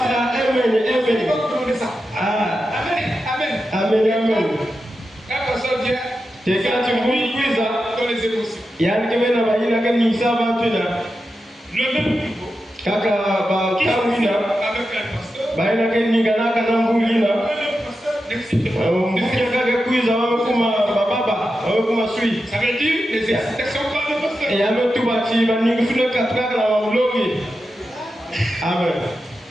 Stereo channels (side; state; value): both; normal; correlation 0.90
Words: là, Amen. Amen. C'est quand tu bouilles ça. Il y a un qui vient là, il y a un qui ça va tout là. Le même niveau. Kaka ba kamina. Ba ina ke ningana kana mbulina. Mukaka kuiza wamekuma baba, wamekuma sui. Ça veut dire les excitations par le pasteur. Et ame tu bati ba ningusule katraka na wamulogi. Amen.